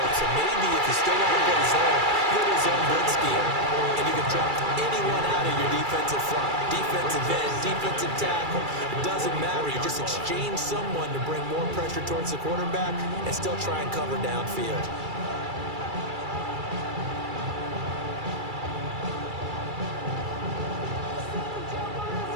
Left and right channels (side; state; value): left; late; 2.3 ms